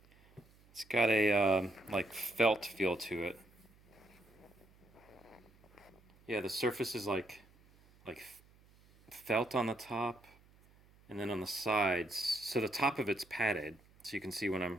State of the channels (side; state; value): right; noise; hum, 28 dB below the sound